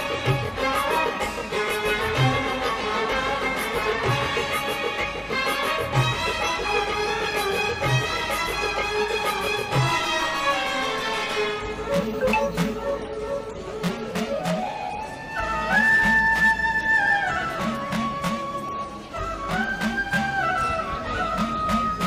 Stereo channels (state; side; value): identical; both; correlation 1.00